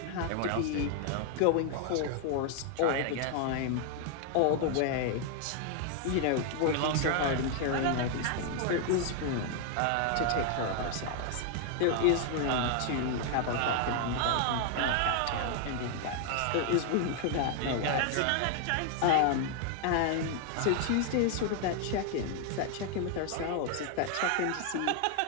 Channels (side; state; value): both; different; correlation 0.00